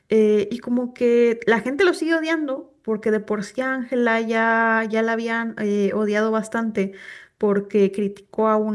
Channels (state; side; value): identical; both; correlation 1.00